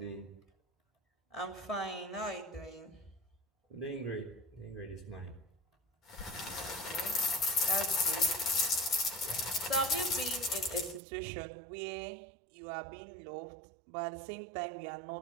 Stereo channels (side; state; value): left; drops out; at 11.0 s